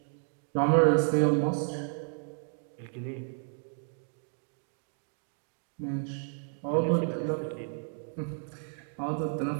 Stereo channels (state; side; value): silent; left; 57 dB below the other